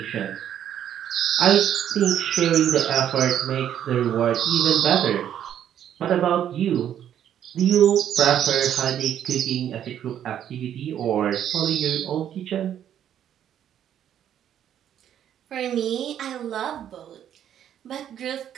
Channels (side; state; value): left; quieter; 10.1 dB